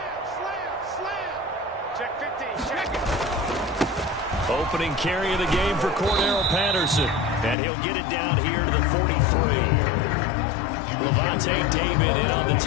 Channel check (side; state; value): right; drops out; at 7.6 s